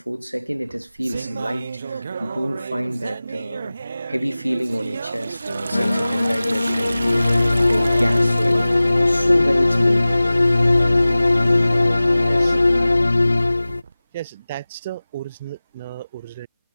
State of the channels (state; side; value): inverted; both; correlation -0.97